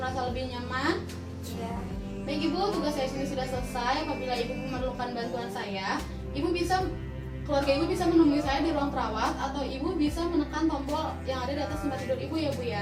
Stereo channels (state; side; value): identical; both; correlation 1.00